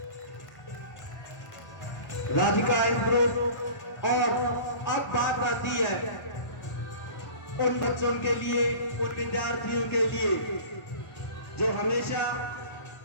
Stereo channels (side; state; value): right; late; 1.0 ms